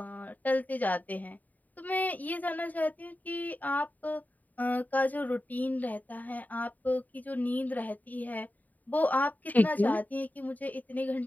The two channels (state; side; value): late; right; 0.079 ms